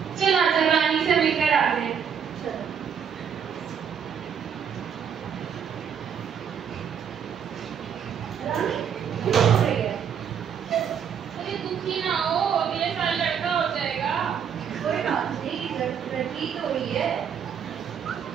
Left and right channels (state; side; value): quieter; left; 7.7 dB